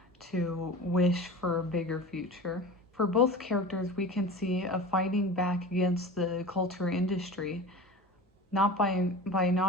to wish for a bigger future. For both characters, we can see a fighting back against the culture industry, not by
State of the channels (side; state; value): both; normal; correlation 0.34